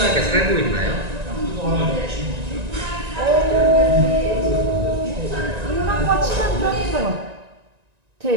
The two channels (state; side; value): late; left; 1.9 ms